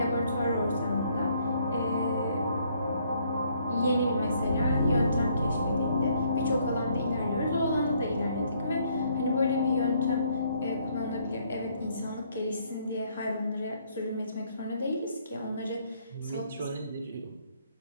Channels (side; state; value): both; inverted; correlation -0.68